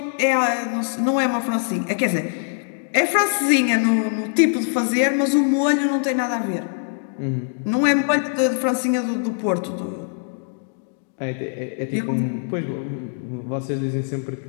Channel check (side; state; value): right; silent; digital silence